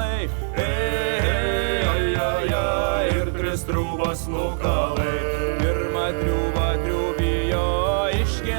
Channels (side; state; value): left; silent; digital silence